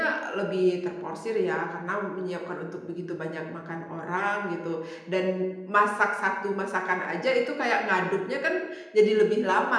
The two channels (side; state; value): both; identical; correlation 1.00